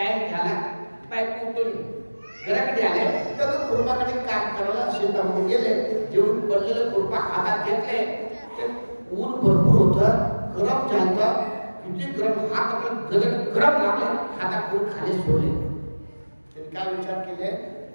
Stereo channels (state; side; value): inverted; both; correlation -1.00